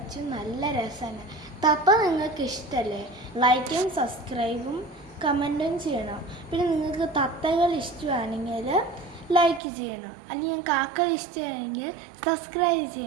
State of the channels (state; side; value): drops out; left; at 9.6 s